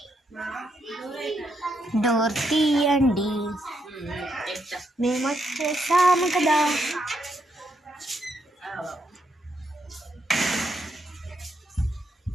డోర్ తీయండి, మేము వచ్చేసాము కదా.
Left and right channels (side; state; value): both; normal; correlation 0.79